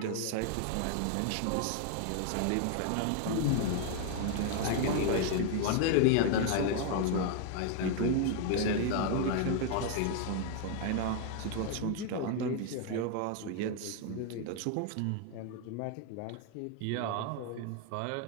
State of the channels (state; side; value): different; both; correlation 0.00